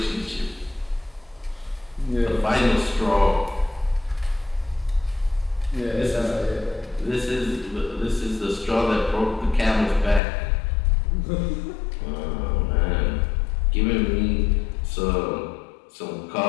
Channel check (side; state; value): right; drops out; at 10.2 s